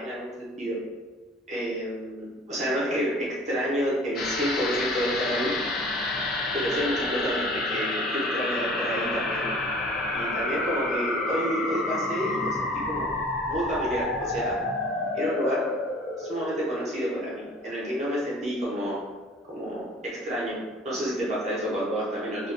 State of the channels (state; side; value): normal; both; correlation 0.48